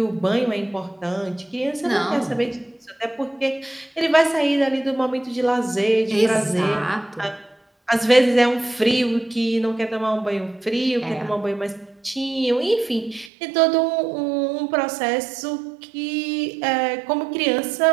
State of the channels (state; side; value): drops out; left; at 13.3 s